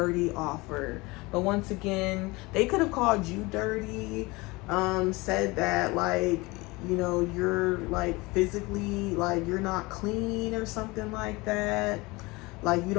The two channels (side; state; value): right; quieter; 23.5 dB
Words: offer. But once again, they could have called you dirty, said that like, you know, you're like physically, like you're not clean or something like that, like you